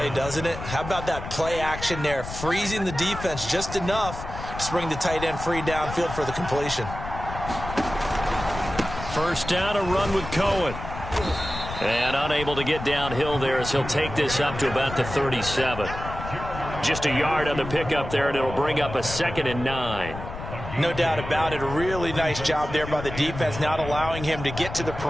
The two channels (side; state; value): left; noise; rumble, 9 dB below the sound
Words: doesn't it? How about that play action there, freezing the defense just enough to bring the tight end free downfield for the completion. First down, a run with Cohen. And unable to get downhill there as he'll take this up to about the 37. Just a yard on the pickup there, and it'll bring up a 2nd and 9. No doubt about it. A really nice job there by the defense, not allowing him to get to the